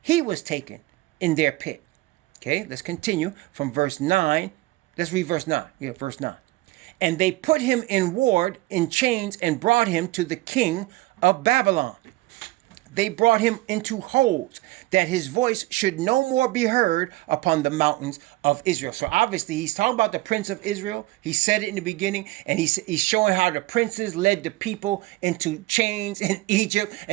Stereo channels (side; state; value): left; quieter; 19.4 dB